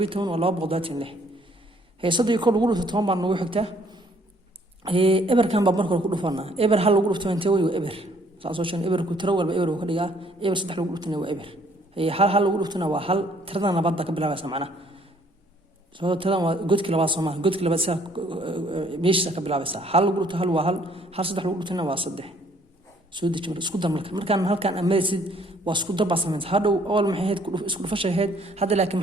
waa 226 صدق كل غلط توم بان نوع حكته إبر كان بابن كل غلطنا إبر هل غلط تنتوي وإبر صارشان إبر كترول بإبر وكذا إبر صدق غلطنا وإبر هل غلطنا وهل ترى أنا بدك بلا بس معنا سو ترى قد كلا بس ما قد كلا بس مش سك بلا بس هل غلط هل وهل صدق غلطنا وصدق سودي جمر اسكودر مركان هل كان أمسد واسكودر بس من هذا أول ما هيد اسكودر فش هيد هذا لكن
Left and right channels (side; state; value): both; normal; correlation 0.62